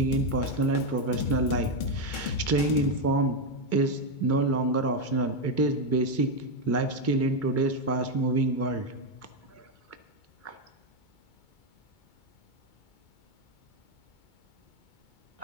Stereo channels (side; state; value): right; late; 2.2 ms